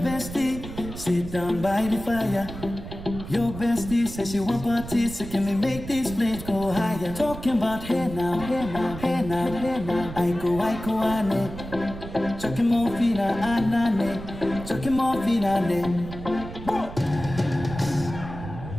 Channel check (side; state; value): right; noise; rumble, 11 dB below the sound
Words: sit down by the fire. Your bestie says she want parties, so can we make these flames go higher? Talking about hey now, hey now, hey now, hey now. I go, ane. Chucking more fina, anane. Chucking more fina, ane.